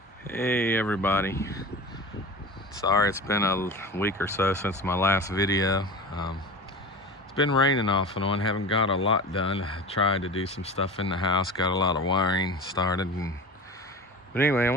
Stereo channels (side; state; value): both; normal; correlation 0.32